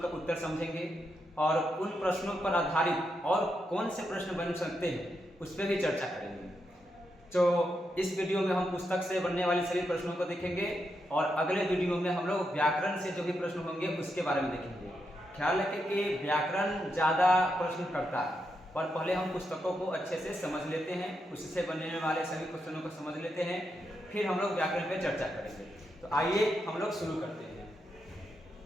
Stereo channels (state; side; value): normal; both; correlation 0.83